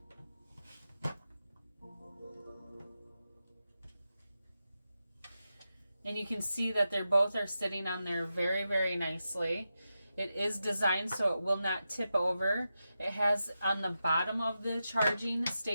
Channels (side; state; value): both; inverted; correlation -0.90